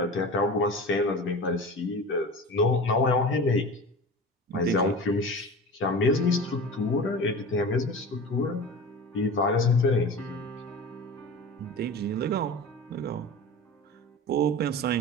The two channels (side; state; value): both; normal; correlation 0.33